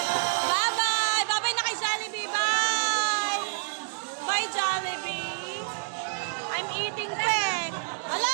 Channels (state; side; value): silent; left; digital silence